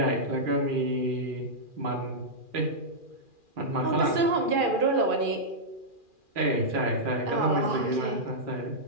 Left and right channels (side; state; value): left; late; 2.4 ms